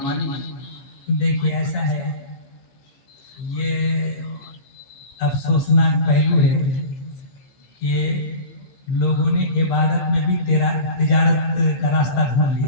ہے؟ دیکھیے ایسا ہے، یہ افسوسناک پہلو ہے کہ لوگوں نے عبادت میں بھی تجارت کا راستہ ڈھونڈ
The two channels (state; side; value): late; right; 15 ms